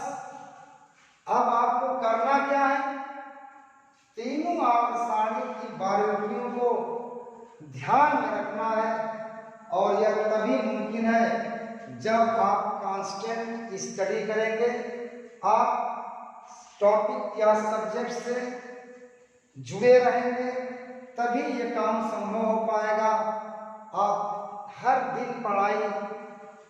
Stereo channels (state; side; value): identical; both; correlation 1.00